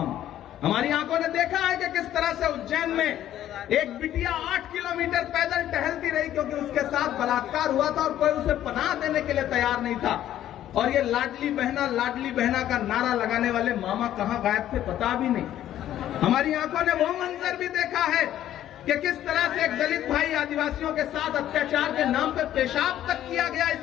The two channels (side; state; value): right; quieter; 12.1 dB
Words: हमारी आंखों ने देखा है कि किस तरह से उज्जैन में एक बिटिया 8 किलोमीटर पैदल टहलती रही क्योंकि उसके साथ बलात्कार हुआ था और कोई उसे पनाह देने के लिए तैयार नहीं था। और ये लाडली बहना का नारा लगाने वाले मामा कहां गायब थे पता भी नहीं। हमारी आंखों ने वो मंजर भी देखा है कि किस तरह से एक दलित भाई आदिवासियों के साथ अत्याचार के नाम पे पेशाब तक किया गया